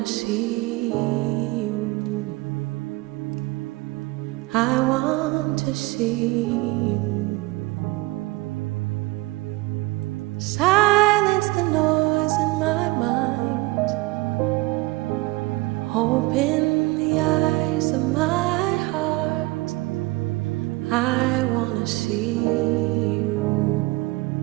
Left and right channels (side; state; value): left; quieter; 21.8 dB